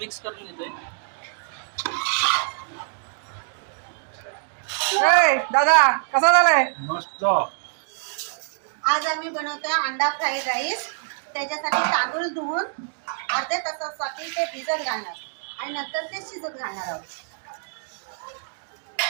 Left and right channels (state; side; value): silent; left; digital silence